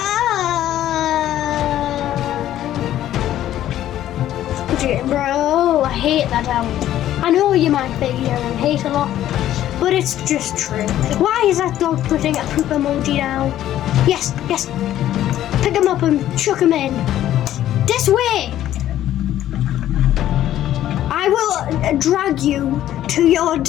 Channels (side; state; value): right; quieter; 12.5 dB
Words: Bro, I hate that album. I know you might be hearing hate a lot, but it's just true. Why is that dog putting a poop emoji down? Yes. Pick him up and chuck him in. This Swim! I will drag you to your